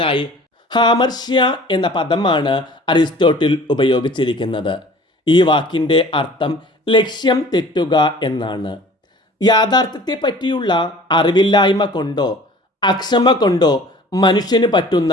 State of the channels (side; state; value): both; normal; correlation 0.47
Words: ഹാമർഷ്യ എന്ന പദമാണ് അരിസ്റ്റോട്ടിൽ ഉപയോഗിച്ചിരിക്കുന്നത്. ഈ വാക്കിൻ്റെ അർത്ഥം ലക്ഷ്യം തെറ്റുക എന്നാണ്. യാഥാർത്ഥ്യത്തെ പറ്റിയുള്ള അറിവില്ലായ്മ കൊണ്ടോ അക്ഷമ കൊണ്ടോ മനുഷ്യന് പറ്റുന്ന